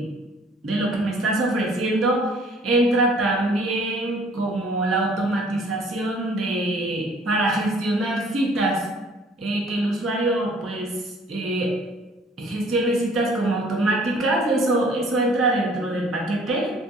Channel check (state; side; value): normal; both; correlation 0.56